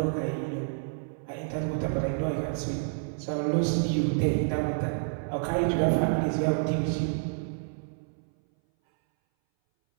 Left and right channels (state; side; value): silent; left; 59 dB below the other